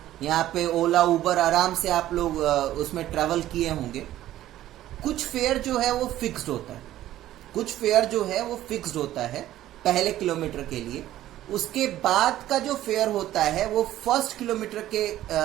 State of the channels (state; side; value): quieter; left; 13.7 dB